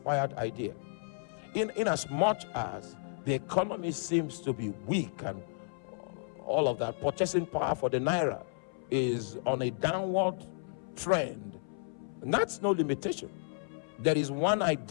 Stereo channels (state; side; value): silent; right; 56 dB below the other